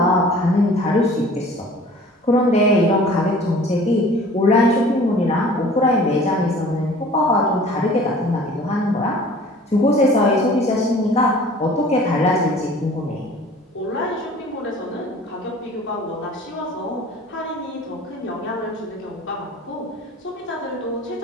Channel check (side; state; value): both; normal; correlation 0.47